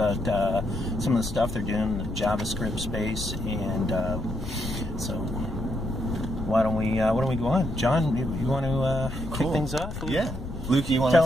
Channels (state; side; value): noise; left; rumble, 8 dB below the sound